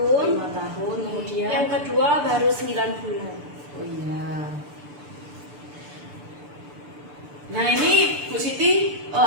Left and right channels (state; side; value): late; left; 6.9 ms